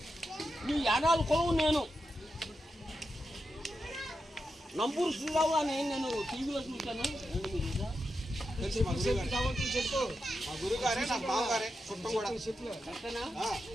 ఈ యానాలు కొలువు నేను నంబూరు శ్రీరావు అని నేను టీవీలో చూశాను. కరెక్టేనా?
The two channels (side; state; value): both; normal; correlation 0.88